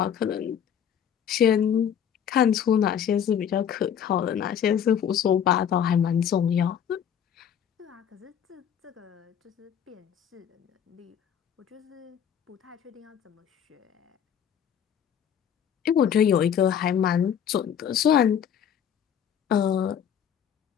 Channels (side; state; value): right; quieter; 8.7 dB